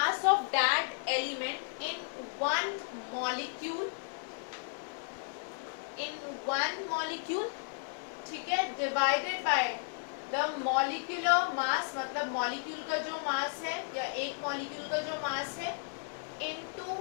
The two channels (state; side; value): silent; right; digital silence